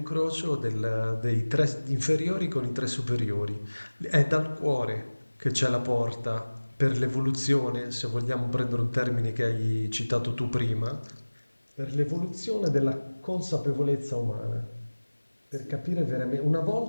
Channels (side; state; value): both; inverted; correlation -1.00